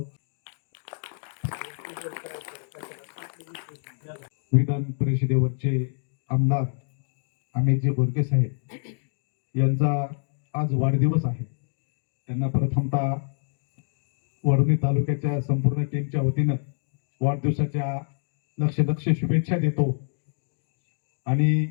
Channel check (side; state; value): right; silent; digital silence